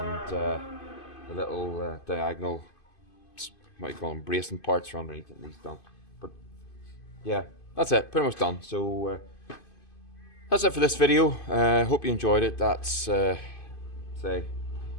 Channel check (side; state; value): right; late; 2.5 ms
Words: the little diagonal, what do you call them, bracing parts are underneath it needs done. But yeah, that's it, pretty much done. So that's it for this video. Hope you enjoyed it. That's say